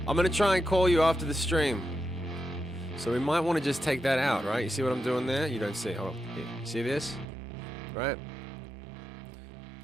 I'm gonna try and call you after the stream. So we might want to just take that out, right? You see what I'm doing there? You don't see, hold on, here. See this? Right?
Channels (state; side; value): drops out; left; at 7.2 s